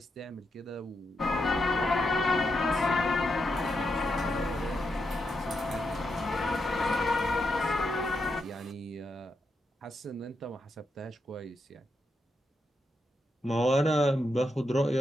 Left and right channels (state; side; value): normal; both; correlation 0.83